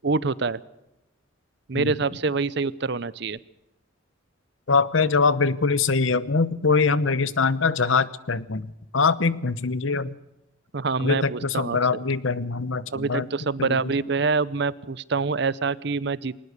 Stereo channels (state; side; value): normal; both; correlation -0.02